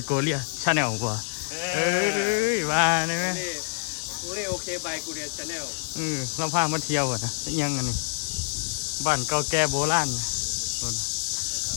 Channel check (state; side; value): silent; right; digital silence